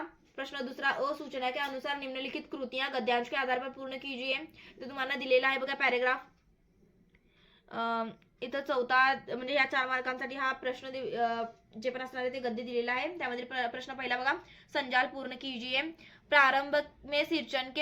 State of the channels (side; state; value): both; identical; correlation 1.00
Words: प्रश्न दुसरा, सूचना के अनुसार निम्नलिखित कृतियां गद्यांश के आधार पर पूर्ण कीजिए. तर तुम्हाला दिलेला आहे बघा पॅराग्राफ. इथं चौथा म्हणजे या 4 मार्कांसाठी हा प्रश्न जे पण असणार आहे ते गद्य दिलेला आहे. त्यामध्ये प्रश्न पहिला बघा, संजाल पूर्ण कीजिए. प्रारंभ में सिंचन